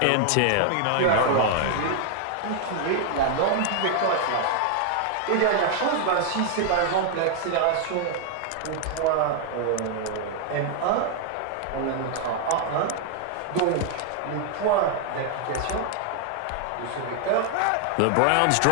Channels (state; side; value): different; both; correlation 0.00